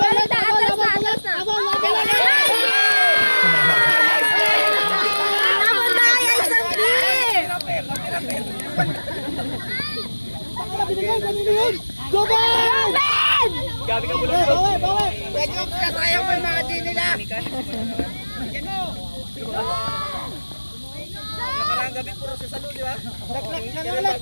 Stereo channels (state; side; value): inverted; both; correlation -1.00